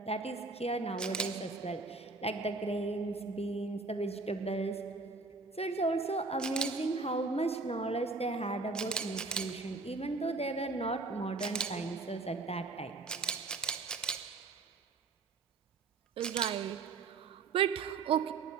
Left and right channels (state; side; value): quieter; left; 3.9 dB